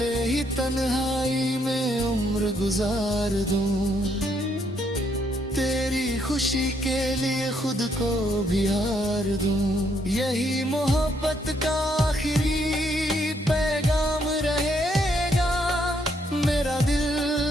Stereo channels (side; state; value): both; normal; correlation 0.72